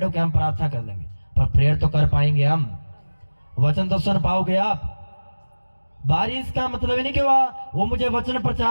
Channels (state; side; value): inverted; both; correlation -1.00